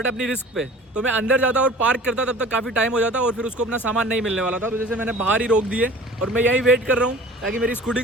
अपनी रिस्क पे। तो मैं अंदर जाता और पार्क करता तब तक काफ़ी टाइम हो जाता और फिर उसको अपना सामान नहीं मिलने वाला था, तो जैसे मैंने बाहर ही रोक दिए और मैं यहीं वेट कर रहा हूँ ताकि मेरी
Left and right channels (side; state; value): both; normal; correlation 0.44